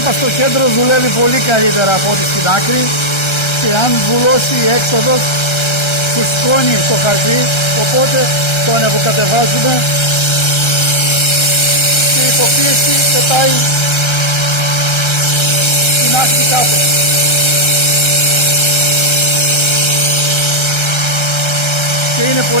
είπα, στο κέντρο δουλεύει πολύ καλύτερα από ό,τι στην άκρη, και αν βουλώσει η έξοδος φουσκώνει το χαρτί, οπότε το ανεβοκατεβάζουμε και η υποπίεση πετάει την άκρη κάτω. Και είναι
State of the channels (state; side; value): late; right; 1.3 ms